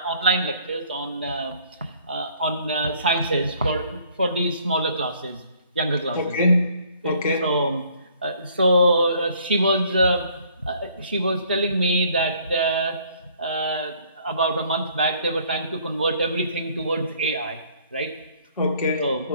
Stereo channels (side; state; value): both; inverted; correlation -0.60